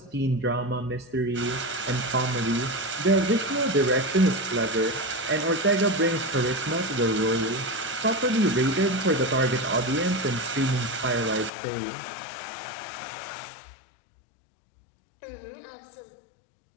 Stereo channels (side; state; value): right; drops out; at 11.5 s